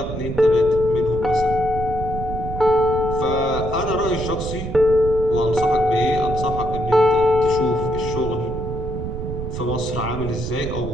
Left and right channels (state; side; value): noise; right; rumble, 6 dB below the sound